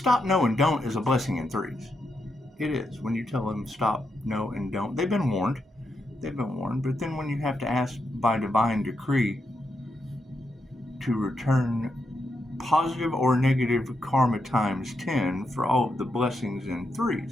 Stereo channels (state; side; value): normal; both; correlation 0.83